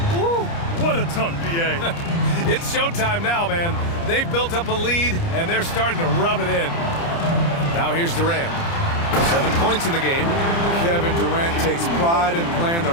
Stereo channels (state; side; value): late; right; 29 ms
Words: Woo, what a dunk, B.A. It's showtime now, man. They've built up a lead, and they're starting to rub it in. Now here's Durant. 7 points in the game. Kevin Durant takes pride in playing the